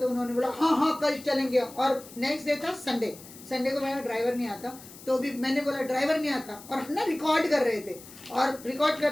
उन्होंने बोला हाँ हाँ कल चलेंगे। और नेक्स्ट डे था संडे को मेरा ड्राइवर नहीं आता, तो भी मैंने बोला ड्राइवर नहीं आता, और हम ना रिकॉर्ड कर रहे थे। और रिकॉर्ड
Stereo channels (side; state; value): left; noise; hiss, 18 dB below the sound